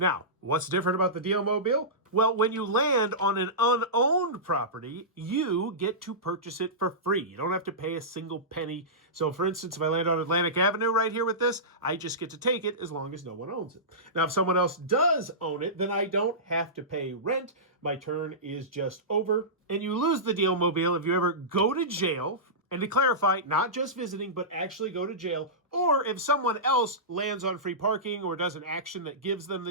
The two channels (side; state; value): both; normal; correlation -0.18